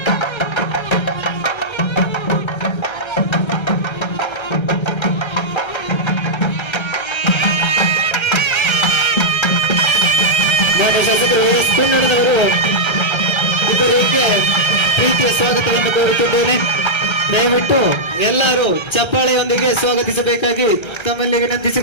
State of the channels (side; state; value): right; late; 1.3 ms